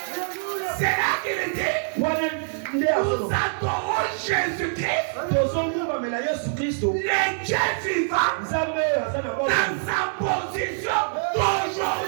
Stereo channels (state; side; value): silent; left; digital silence